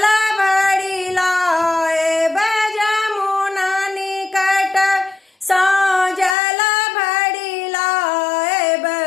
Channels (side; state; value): right; drops out; at 6.4 s